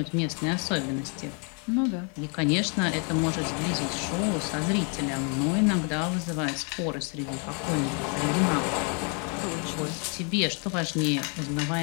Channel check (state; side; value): quieter; right; 37.7 dB